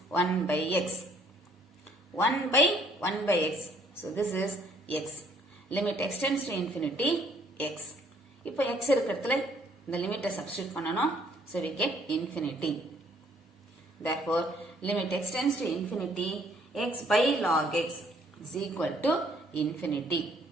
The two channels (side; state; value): both; normal; correlation 0.63